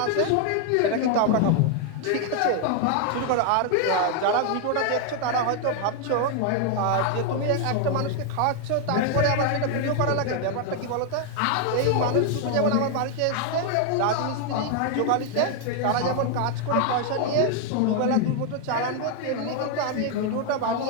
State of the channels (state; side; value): different; both; correlation 0.00